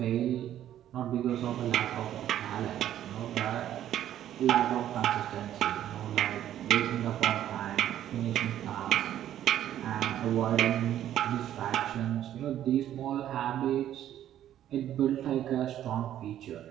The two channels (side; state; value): left; quieter; 11.6 dB